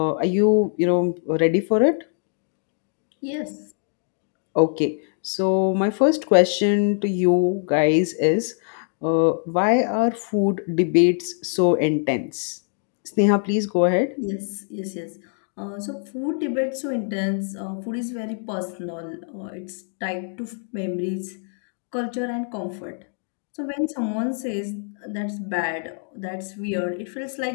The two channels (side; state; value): right; silent; 56 dB below the other